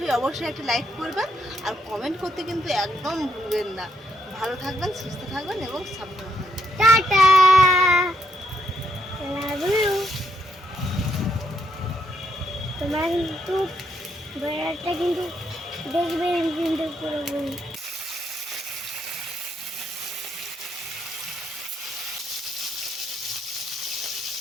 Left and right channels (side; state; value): both; normal; correlation 0.77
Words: একটা লাইক করবেন আর কমেন্ট করতে কিন্তু একদম ভুলবেন না। ভালো থাকবেন, সুস্থ থাকবেন এবং সাবধানে থাকবেন। Tata, love you. তোমরা কিন্তু ভিডিওটা কিন্তু দেখবেন কিন্তু পুরো